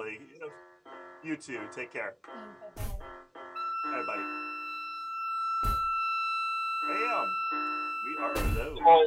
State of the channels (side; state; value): both; identical; correlation 1.00